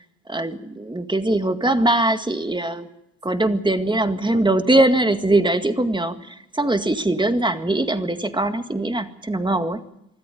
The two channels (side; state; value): both; normal; correlation 0.67